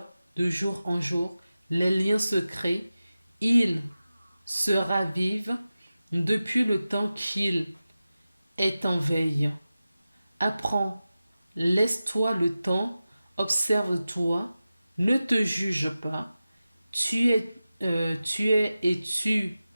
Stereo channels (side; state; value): both; inverted; correlation -0.94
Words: de jour en jour. Les liens se créent, ils se ravivent depuis le temps qu'il est en veille. Apprends, laisse-toi le temps, observe-toi, ne te juge pas. Tu es et tu